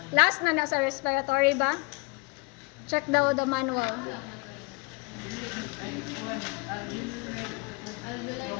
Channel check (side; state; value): right; quieter; 28.5 dB